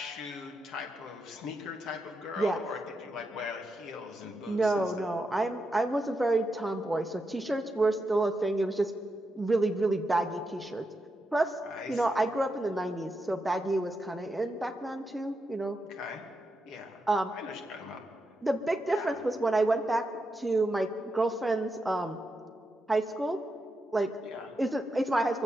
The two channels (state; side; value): normal; both; correlation 0.85